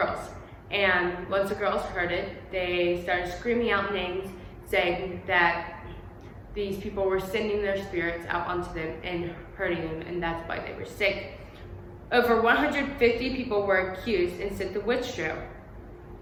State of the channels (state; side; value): identical; both; correlation 1.00